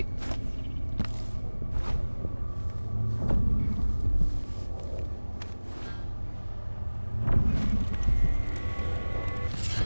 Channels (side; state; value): both; inverted; correlation -1.00